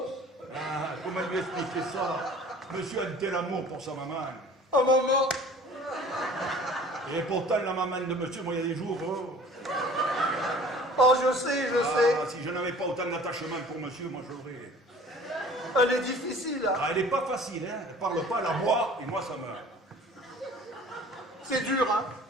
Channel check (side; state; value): both; normal; correlation 0.48